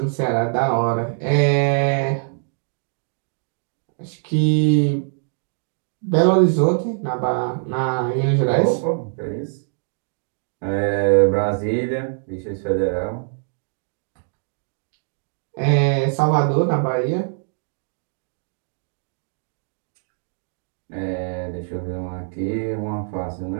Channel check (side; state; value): left; silent; digital silence